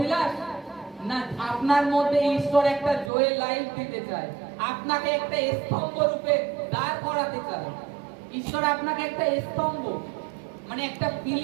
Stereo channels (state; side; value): drops out; left; at 3.1 s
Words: না আপনার মধ্যে ঈশ্বর একটা জয়ের লাইফ দিতে চায়, আপনাকে একটা স্তম্ভ রূপে দাঁড় করাতে চায়। ঈশ্বর আপনাকে একটা স্তম্ভ, মানে একটা